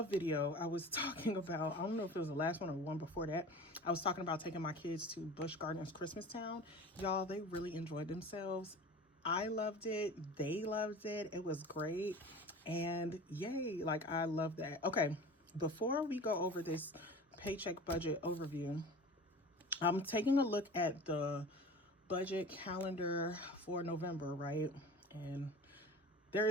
video I was talking about, I don't know if it was the last one or one before that, I was talking about taking my kids to Busch Gardens Christmas Town. Y'all, they really enjoyed themselves. I loved it. They loved it. It was great. And yay, like I love that. Okay, before we go over this paycheck budget overview, I'm taking a look at the budget calendar for November, right? And there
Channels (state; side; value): normal; both; correlation 0.38